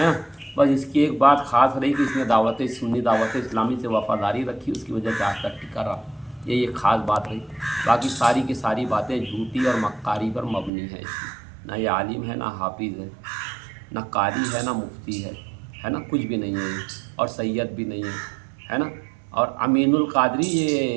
बस इसकी एक बात ख़ास रही कि इसने सुन्नी दावत इस्लामी से वफ़ादारी रखी, उसकी वजह से आज तक टिका रहा। ये एक ख़ास बात रही। बाकी सारी की सारी बातें झूठी और मक्कारी पर मबनी है इसकी। ना ये आलिम है, ना हाफिज़ है, ना कारी है, ना मुफ्ती है ना, कुछ भी नहीं है ये, और सैयद भी नहीं है ना। और अमीनुल कादरी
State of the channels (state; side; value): drops out; left; at 10.7 s